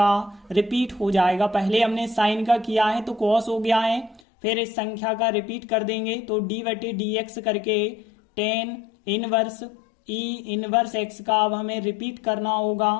रिपीट हो जाएगा। पहले हमने साइन का किया है तो cos हो गया है, फिर इस संख्या का रिपीट कर देंगे तो d/dx करके ten inverse e inverse x का अब हमें रिपीट करना होगा।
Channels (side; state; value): right; drops out; at 4.2 s